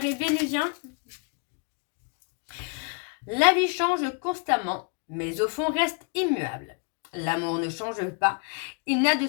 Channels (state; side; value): quieter; right; 38.1 dB